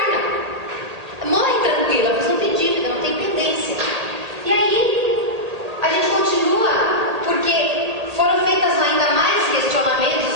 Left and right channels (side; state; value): left; late; 1.8 ms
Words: Morre tranquila, mas não tem dívida, não tem pendência. E aí a gente continua, porque foram feitas ainda mais